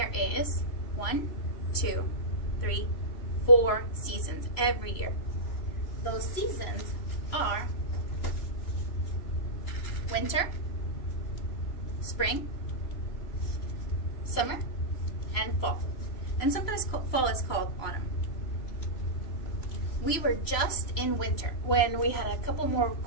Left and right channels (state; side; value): late; right; 3.0 ms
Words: is 1, 2, 3, 4 seasons every year. Those seasons are winter, spring, summer, and fall. And sometimes fall is called autumn. We were just in winter when we had a couple more